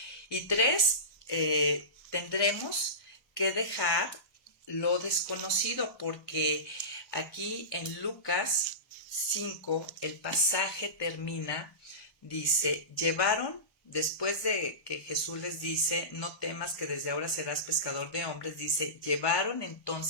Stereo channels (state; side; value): late; right; 1.1 ms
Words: Y 3, tendremos que dejar lo desconocido, porque aquí en Lucas 5 el pasaje termina, dice, después de que Jesús les dice, no temas que desde ahora serás pescador de hombres, dice, llevaron